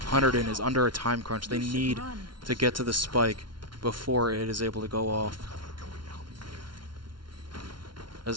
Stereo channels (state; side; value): late; left; 0.72 ms